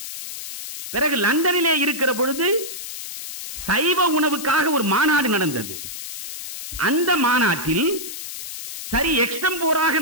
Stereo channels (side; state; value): left; noise; hiss, 9 dB below the sound